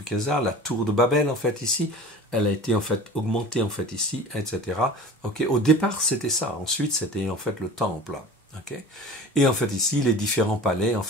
la tour de Babel, en fait, ici. Elle a été, en fait, augmentée, en fait, ici, etc. Au départ, c'était ça. Ensuite, c'était, en fait, le temple. Et en fait ici, les différents palais en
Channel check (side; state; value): both; normal; correlation 0.39